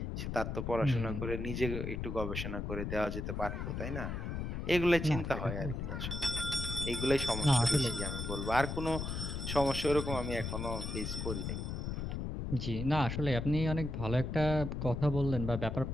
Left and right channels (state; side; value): noise; left; rumble, 4 dB below the sound